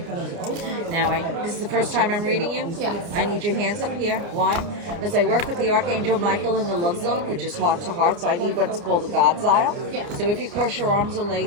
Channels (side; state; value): left; late; 29 ms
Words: Now, this is the first time I'm reading you? Yes. I need your hands up here. Why? Because I work with the Archangel Michael in the love zone, which is heart to heart, so I need what's called a God's aisle. Yeah. So if you cross your arms or